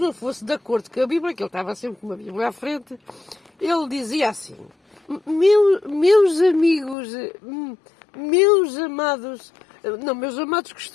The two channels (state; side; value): drops out; right; at 7.0 s